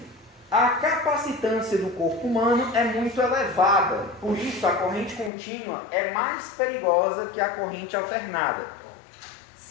A capacitância do corpo humano é muito elevada, por isso a corrente contínua é mais perigosa que a corrente alternada.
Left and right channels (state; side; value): drops out; right; at 5.3 s